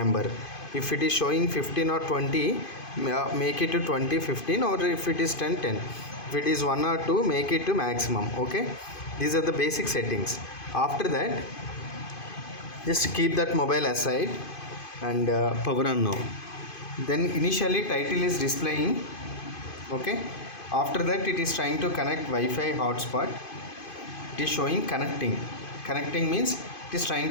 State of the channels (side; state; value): right; late; 2.5 ms